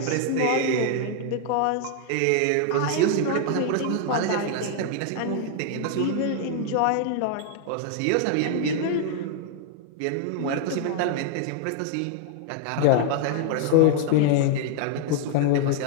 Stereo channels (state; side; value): different; both; correlation 0.00